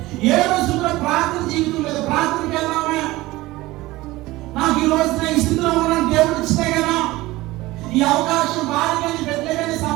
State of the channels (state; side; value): quieter; left; 18.9 dB